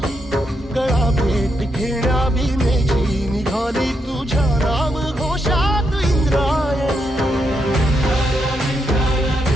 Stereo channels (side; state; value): both; normal; correlation 0.81